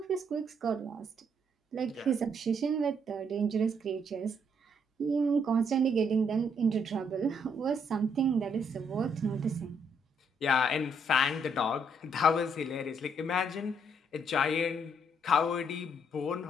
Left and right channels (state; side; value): normal; both; correlation 0.71